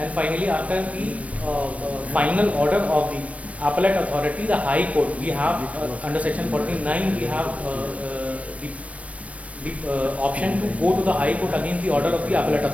finally, after the final order of the appellate authority, the High Court, we have under section 49, we have the option to go to the High Court against the order of the appellate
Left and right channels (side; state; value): left; late; 0.065 ms